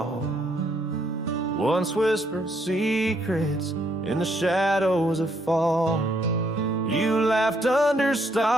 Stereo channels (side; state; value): both; normal; correlation 0.71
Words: Once whispered secrets in the shadows of fall. You laughed under